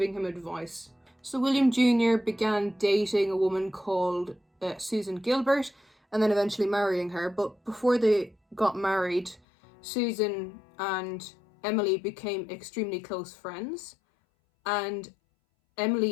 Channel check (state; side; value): drops out; right; at 9.4 s